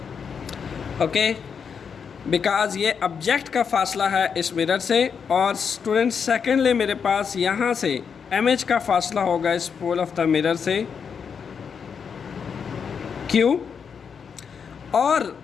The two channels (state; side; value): quieter; right; 6.5 dB